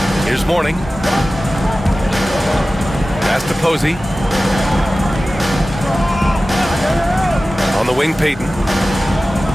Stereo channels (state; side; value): normal; both; correlation 0.96